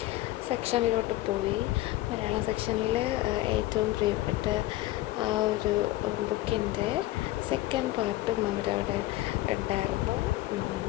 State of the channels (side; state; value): right; quieter; 16.8 dB